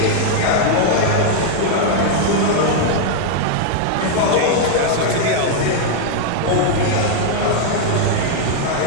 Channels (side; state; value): both; different; correlation 0.00